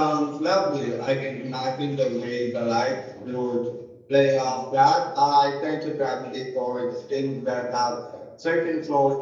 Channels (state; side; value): identical; both; correlation 1.00